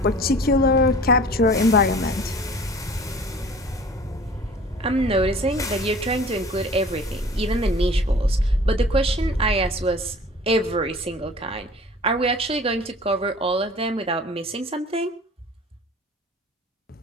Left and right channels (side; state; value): both; normal; correlation 0.45